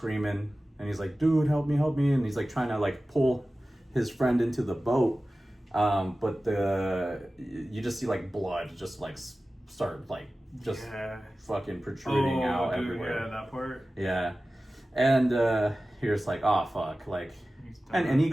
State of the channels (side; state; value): both; normal; correlation 0.96